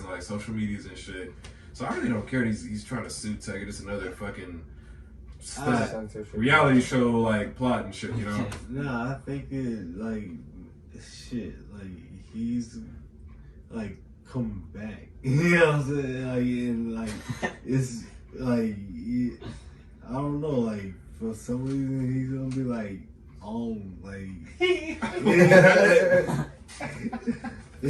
like social medias and shit. So I really don't care. He's trying to sue Tech. It's another fucking reality show like plot and shit. You know? Nah, I think it like shit. Like he's like come back. You know what I'm saying? Like and like it's like I don't know. Like for some reason he's gonna be like on like.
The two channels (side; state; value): both; identical; correlation 1.00